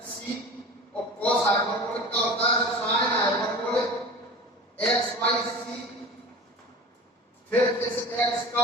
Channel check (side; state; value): both; normal; correlation 0.36